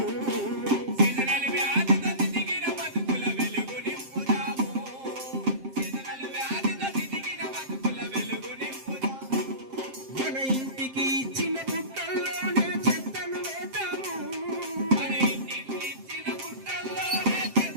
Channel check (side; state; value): left; late; 7.6 ms